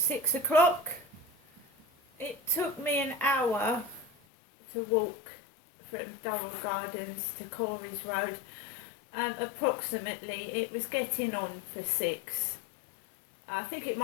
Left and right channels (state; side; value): drops out; right; at 4.1 s